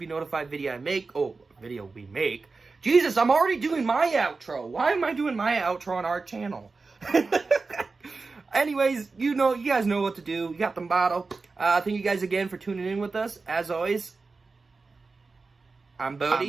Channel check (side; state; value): left; quieter; 4.1 dB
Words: notified video we make. Jesus, I'm already doing my outro. Why am I doing my outro on our channel? Anyways, you guys know what to do. You got the motto. Thank you guys again for tuning in with us. As always, I'm Bodie.